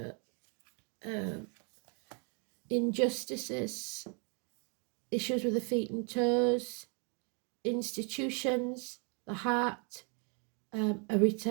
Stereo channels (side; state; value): left; quieter; 36.2 dB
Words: injustices, issues with the feet and toes, institutions, the heart, a